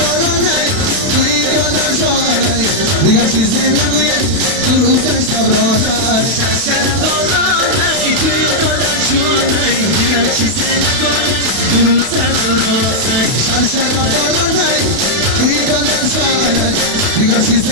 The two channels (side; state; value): left; late; 31 ms